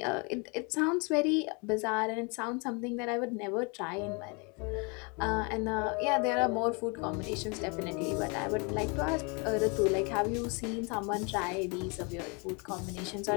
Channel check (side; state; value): right; quieter; 32.4 dB